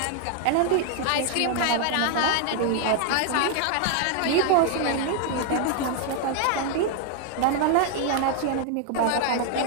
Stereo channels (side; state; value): both; different; correlation 0.00